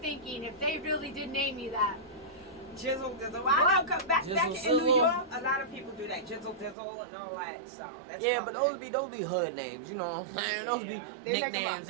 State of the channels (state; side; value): drops out; left; at 6.8 s